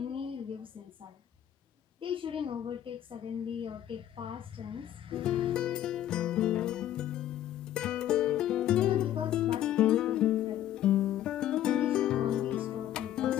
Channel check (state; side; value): quieter; right; 11.8 dB